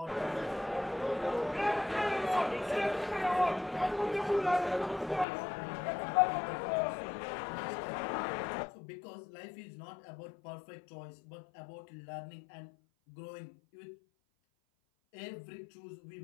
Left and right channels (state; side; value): drops out; right; at 5.2 s